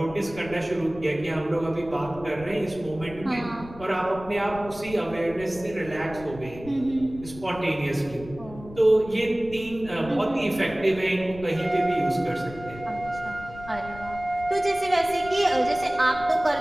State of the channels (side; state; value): left; noise; rumble, 16 dB below the sound